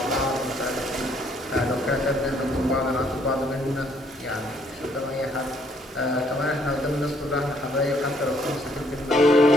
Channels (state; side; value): normal; both; correlation 0.66